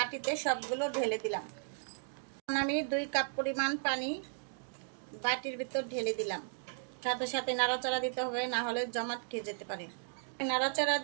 সবগুলো ঢেলে দিলাম। আমি 2 কাপ পরিমাণ পানি বাটির ভিতর ঢেলে দিলাম। সাথে সাথে নাড়াচাড়া দিতে হবে, না হলে জমাট খেয়ে যেতে পারে। নাড়াচাড়া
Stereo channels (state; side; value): silent; left; digital silence